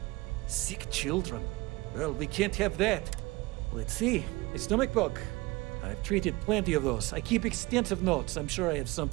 Sick children. Well, we can't have that. Let's see. A stomach bug. I've treated plenty of those. I keep extensive notes. I'm sure I have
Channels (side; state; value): left; quieter; 22.1 dB